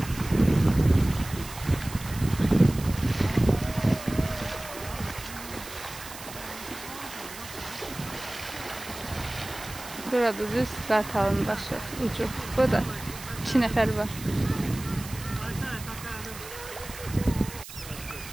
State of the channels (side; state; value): right; noise; hiss, 13 dB below the sound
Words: Burada düz Qartalın başı, ucu. Burada 2 nəfər var.